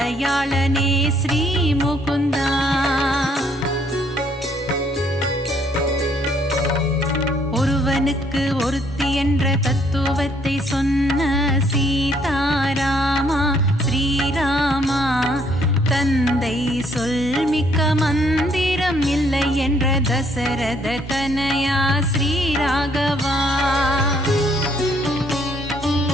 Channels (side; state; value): both; normal; correlation 0.67